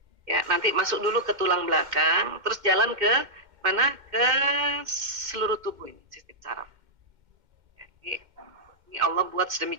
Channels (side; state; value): left; late; 2.1 ms